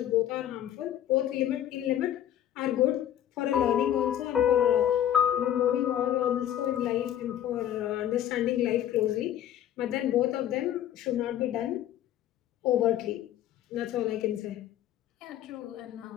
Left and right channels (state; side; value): quieter; right; 11.3 dB